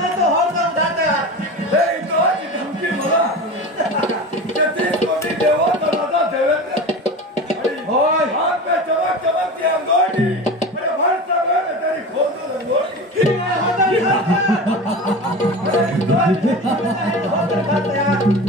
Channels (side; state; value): both; normal; correlation 0.30